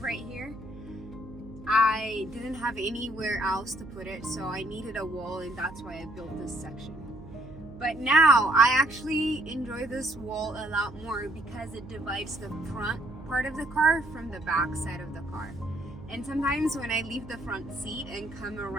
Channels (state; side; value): noise; right; hum, 17 dB below the sound